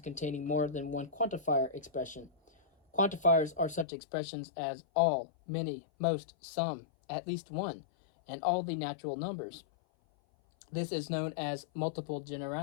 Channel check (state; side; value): drops out; right; at 3.9 s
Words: more than one quantifier expression. Quantifiers are such expressions as all, many, most, some, at least one, and all the natural numbers. This is known as multiple